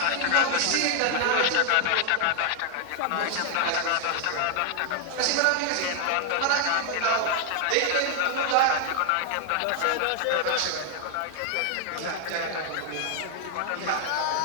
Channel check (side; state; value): both; different; correlation 0.00